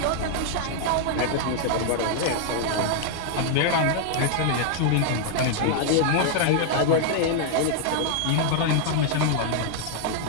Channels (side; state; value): both; different; correlation -0.01